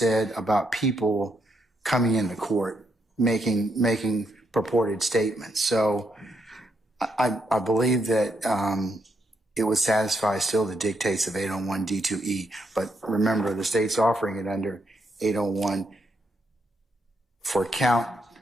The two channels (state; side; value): normal; both; correlation 0.78